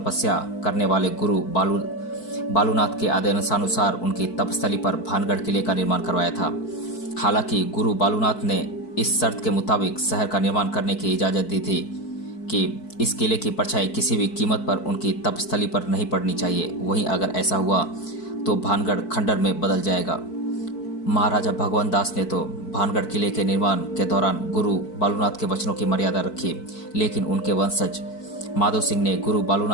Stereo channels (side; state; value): right; late; 4.6 ms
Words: करने वाले गुरु बालूनाथ के आदेशानुसार उनकी तपस्थली पर भानगढ़ किले का निर्माण करवाया था। हालांकि गुरु बालूनाथ ने इस शर्त के मुताबिक शहर का निर्माण करने की इजाज़त दी थी कि इस किले की परछाई किसी भी कीमत पर उनकी तपस्थली पर नहीं पड़नी चाहिए। वहीं अगर ऐसा हुआ तो भानगढ़ खंडर में बदल जाएगा। महाराजा भगवंत दास ने तो भानगढ़ किले के निर्माण के दौरान गुरु बालूनाथ के वचनों की मर्यादा रखी, लेकिन उनके वंशज माधो सिंह ने गुरु